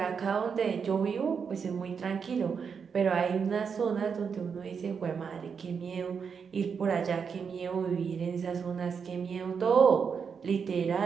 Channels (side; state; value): left; quieter; 6.2 dB